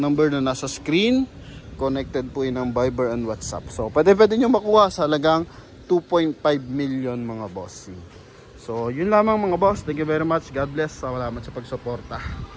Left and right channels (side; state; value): both; identical; correlation 1.00